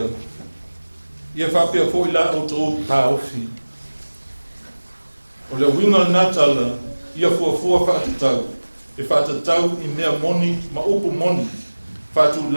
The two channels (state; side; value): inverted; both; correlation -1.00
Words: Ia whapea fo I la o tō tā ofi. O le winga natala, ia fua whaatatau. E whaatatau I mea moni, ma upu moni. Whātu